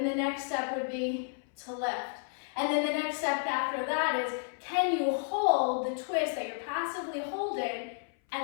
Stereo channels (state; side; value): silent; right; 57 dB below the other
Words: the next step would be to lift. And then the next step after that is, can you hold the twist that you're passively holding